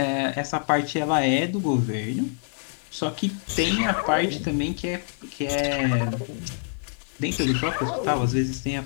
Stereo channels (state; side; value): silent; right; 61 dB below the other